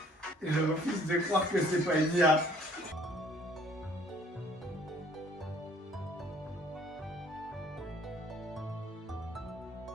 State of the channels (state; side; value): normal; both; correlation 0.58